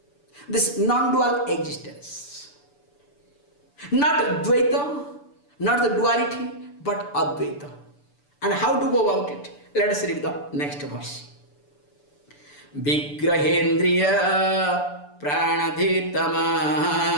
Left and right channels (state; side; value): late; right; 6.9 ms